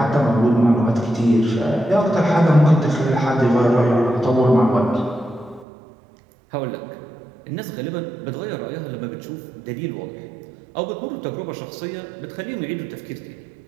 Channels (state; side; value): drops out; left; at 5.7 s